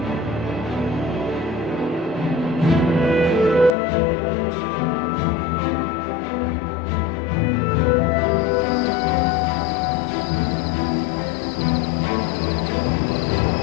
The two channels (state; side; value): drops out; right; at 3.7 s